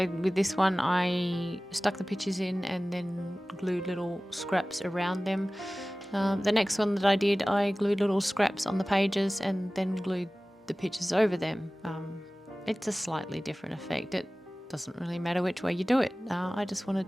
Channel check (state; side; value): normal; both; correlation 0.98